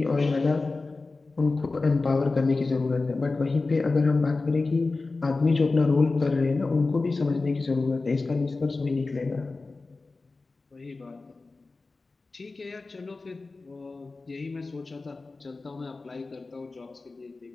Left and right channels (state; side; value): quieter; right; 3.6 dB